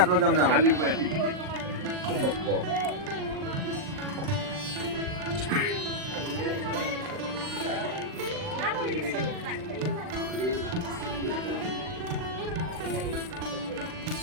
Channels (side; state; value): left; late; 39 ms